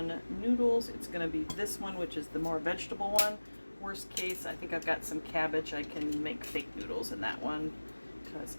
noodles, it's going to be this one, which is the more vegetable one. Worst case, I think I've got some cabbage. I can make fake noodles in that one because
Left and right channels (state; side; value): inverted; both; correlation -1.00